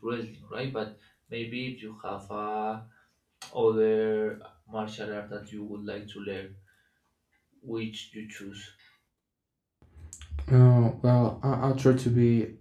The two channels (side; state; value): both; identical; correlation 1.00